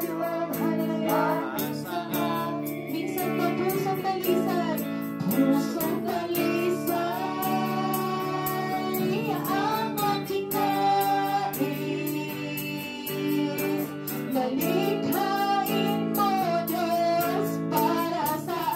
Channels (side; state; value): both; identical; correlation 1.00